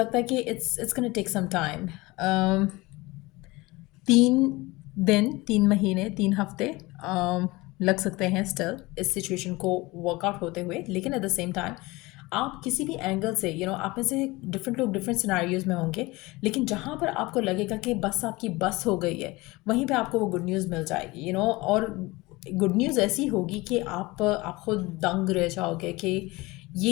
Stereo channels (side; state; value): right; quieter; 22.0 dB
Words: है कि it's gonna take some time. 3 दिन, 3 महीने, 3 हफ्ते लग सकते हैं स्टिल इस सिचुएशन को वर्कआउट होते हुए। लेकिन एट द सेम टाइम आप किसी भी एंगल से आप में से डिफरेंट लोग डिफरेंट सिनारियोज़ में होंगे, लेकिन जहाँ पर आपको लगेगा कि बस आपकी बस हो गई है, वहीं पे आपको वो गुड न्यूज़ मिल जाएगी। और गुड न्यूज़ ऐसी होगी कि आप खुद दंग रह जाओगे कि